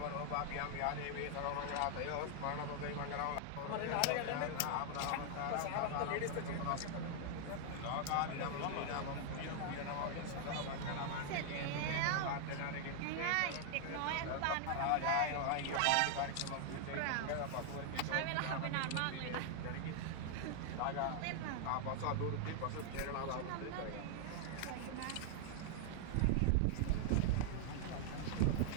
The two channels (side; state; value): both; different; correlation 0.00